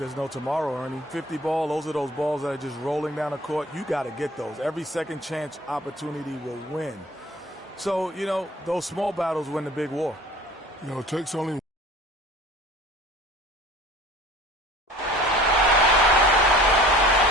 no tomorrow, Ernie. 50 ball, those are those balls that are just rolling down the court. You got to get those. Every second chance opportunity will win. So, those small battles win the big war. It takes only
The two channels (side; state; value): both; normal; correlation 0.46